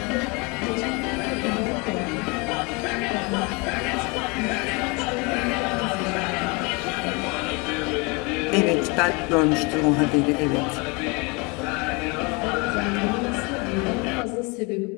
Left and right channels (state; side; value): quieter; right; 28.8 dB